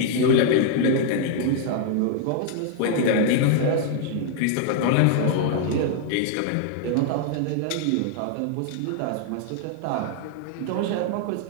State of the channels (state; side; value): different; both; correlation 0.00